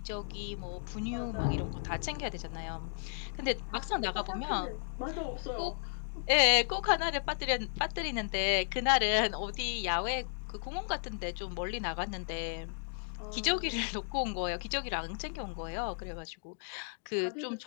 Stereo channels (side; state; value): right; silent; digital silence